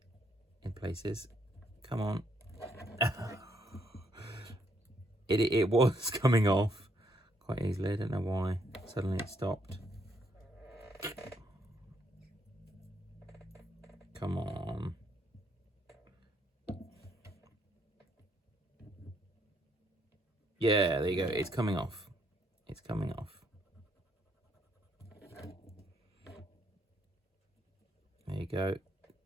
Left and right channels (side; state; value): both; normal; correlation 0.72